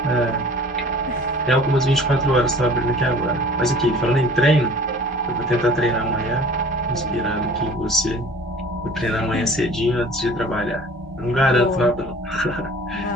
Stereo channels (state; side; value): normal; both; correlation 0.47